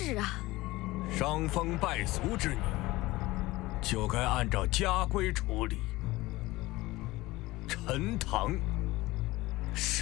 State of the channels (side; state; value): right; quieter; 19.4 dB